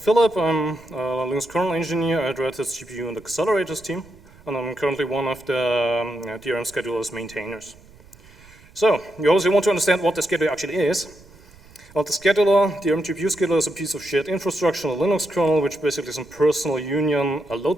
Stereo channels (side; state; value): right; noise; rumble, 25 dB below the sound